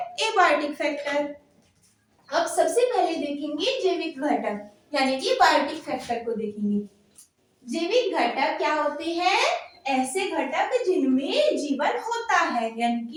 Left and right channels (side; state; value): both; identical; correlation 1.00